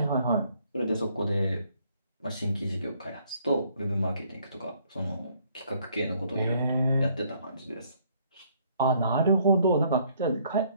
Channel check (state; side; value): inverted; both; correlation -0.65